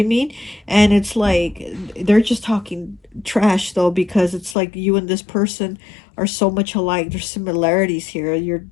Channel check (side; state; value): right; drops out; at 4.5 s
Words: mean? And it's like they're just talking trash, though, because it's like you and this person are so much alike. There's similarities here. You're